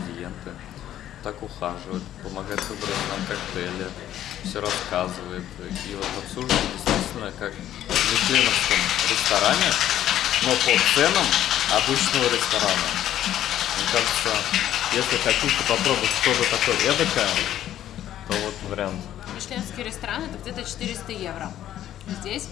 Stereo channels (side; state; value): right; quieter; 11.9 dB